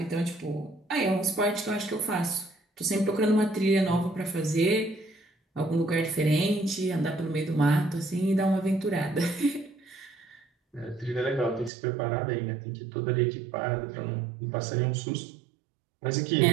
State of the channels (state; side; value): drops out; left; at 11.7 s